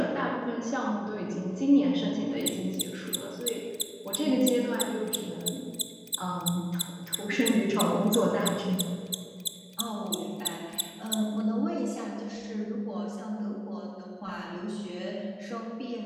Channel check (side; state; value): both; identical; correlation 1.00